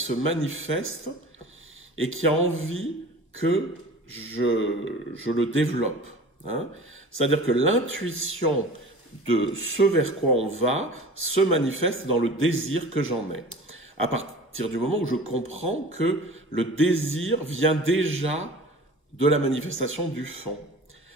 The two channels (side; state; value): both; normal; correlation 0.40